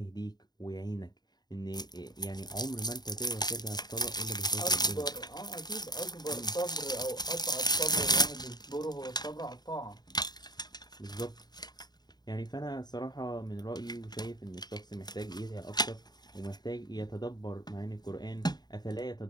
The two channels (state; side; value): late; right; 0.20 ms